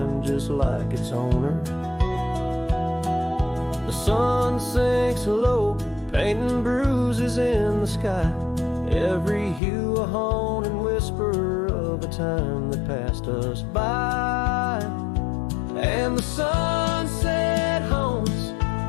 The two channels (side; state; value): right; drops out; at 9.6 s